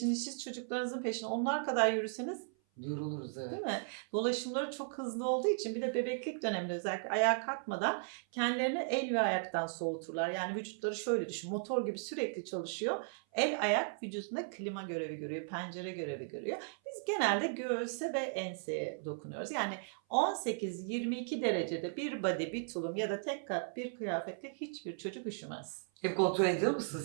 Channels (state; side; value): silent; left; 54 dB below the other